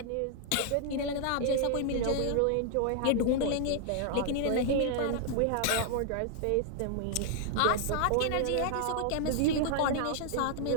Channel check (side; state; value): both; different; correlation 0.00